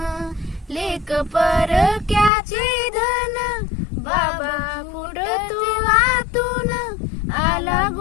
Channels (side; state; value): right; drops out; at 2.3 s